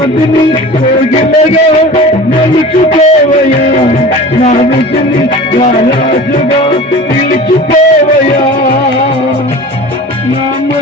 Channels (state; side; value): normal; both; correlation 0.38